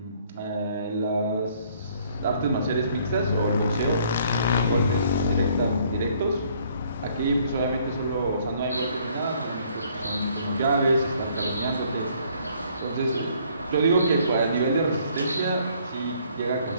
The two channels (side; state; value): both; inverted; correlation -0.63